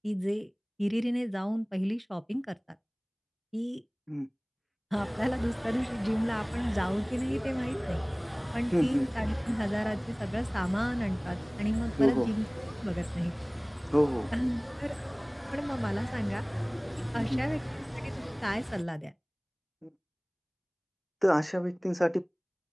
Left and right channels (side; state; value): both; identical; correlation 1.00